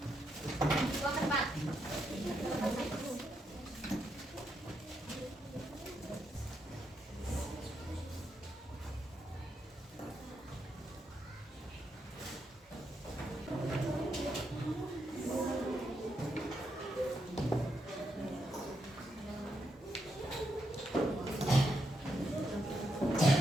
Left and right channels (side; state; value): both; normal; correlation 0.81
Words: Buang ke depan.